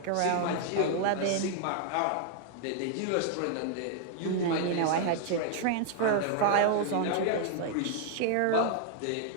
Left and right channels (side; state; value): both; different; correlation 0.00